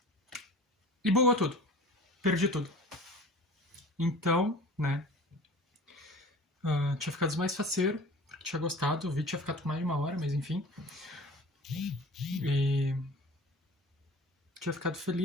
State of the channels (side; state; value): both; normal; correlation 0.41